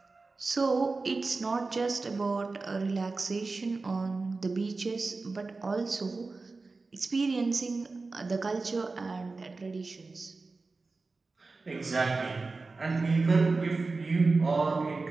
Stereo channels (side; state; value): left; quieter; 3.8 dB